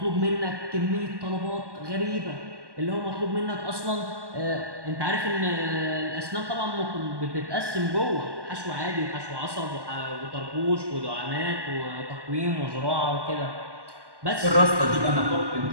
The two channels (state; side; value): late; left; 1.1 ms